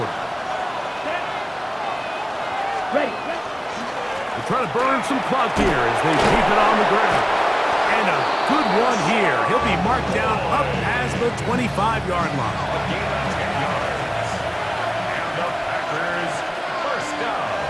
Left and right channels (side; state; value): both; identical; correlation 1.00